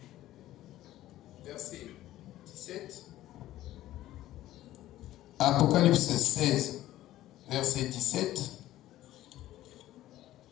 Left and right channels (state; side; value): quieter; right; 14.5 dB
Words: verset 17. Apocalypse 16, verset 17.